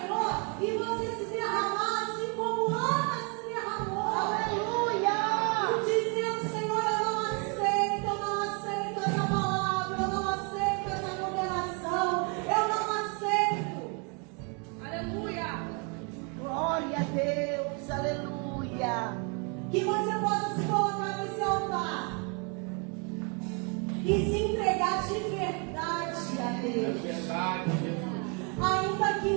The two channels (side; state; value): left; quieter; 34.9 dB